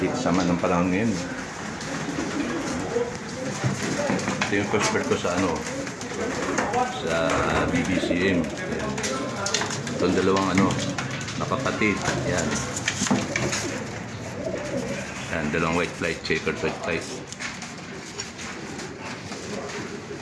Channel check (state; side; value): identical; both; correlation 1.00